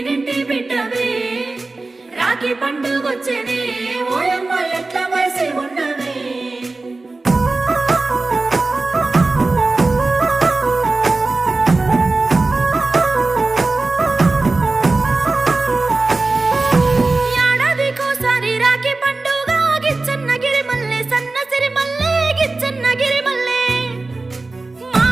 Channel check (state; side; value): quieter; left; 3.4 dB